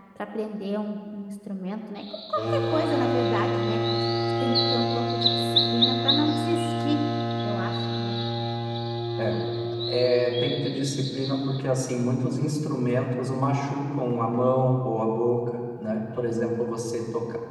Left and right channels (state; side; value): identical; both; correlation 1.00